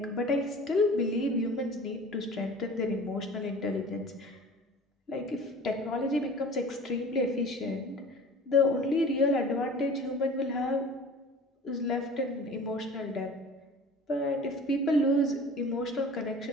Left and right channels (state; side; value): normal; both; correlation 0.42